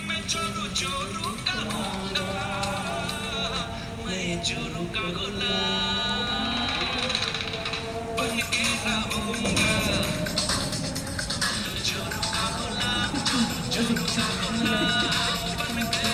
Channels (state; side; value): identical; both; correlation 1.00